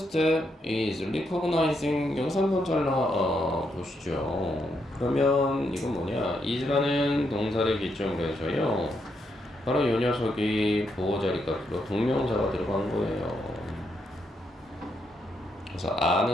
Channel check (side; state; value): both; normal; correlation 0.79